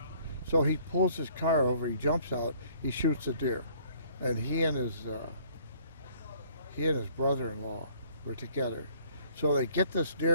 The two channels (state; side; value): inverted; both; correlation -0.59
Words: So he pulls his car over, he jumps out, he shoots the deer. And he and his brother-in-law were together. So they get this